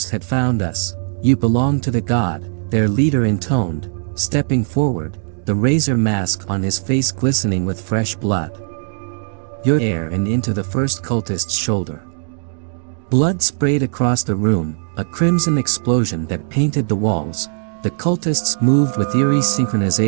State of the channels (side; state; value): left; silent; digital silence